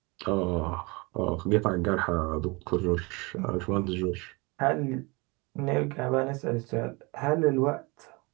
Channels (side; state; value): left; quieter; 26.8 dB